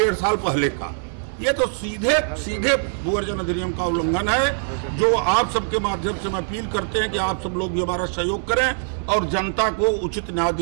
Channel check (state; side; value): silent; left; digital silence